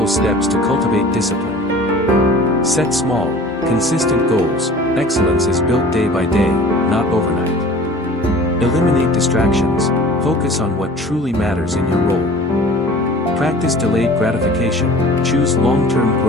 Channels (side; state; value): both; normal; correlation 0.44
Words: steps to cultivate discipline. Set small, consistent goals. Excellence is built day by day, not overnight. Eliminate distractions, focus on what truly matters in your role. Practice delayed gratification, choose long-term